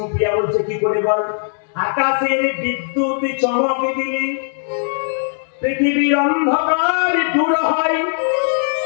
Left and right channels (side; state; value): right; silent; 67 dB below the other